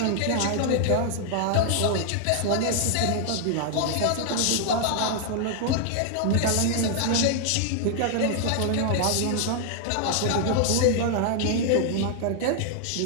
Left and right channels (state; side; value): different; both; correlation 0.00